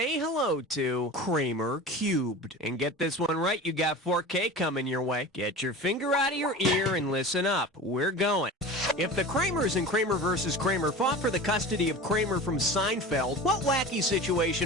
hello to Kramer Cubed. And get this one right, you got 4K coming your way. Get your finger out of your ear and listen up. We're going. If the Kramers in Kramer vs. Kramer fought for the custody of Kramer from Seinfeld, what wacky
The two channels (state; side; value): normal; both; correlation 0.34